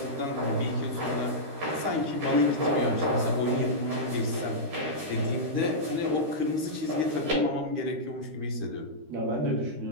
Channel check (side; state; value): left; late; 13 ms